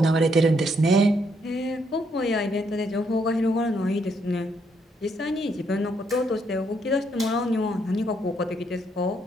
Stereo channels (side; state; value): both; normal; correlation 0.73